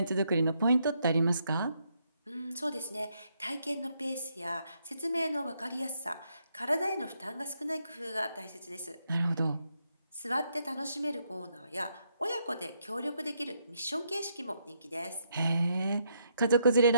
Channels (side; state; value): both; inverted; correlation -0.76